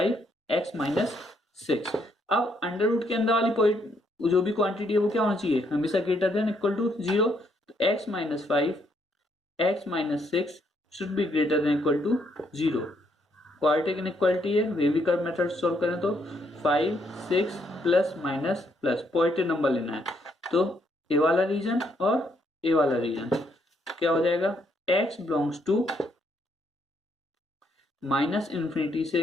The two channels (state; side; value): normal; both; correlation 0.73